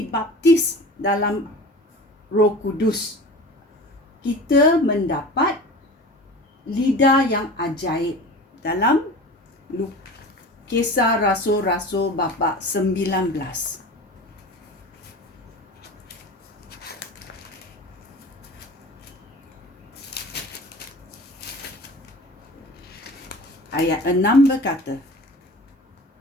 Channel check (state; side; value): normal; both; correlation 0.37